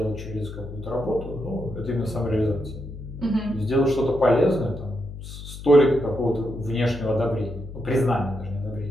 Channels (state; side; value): noise; left; hum, 11 dB below the sound